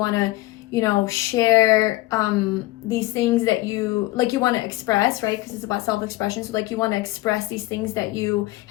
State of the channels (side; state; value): right; quieter; 18.6 dB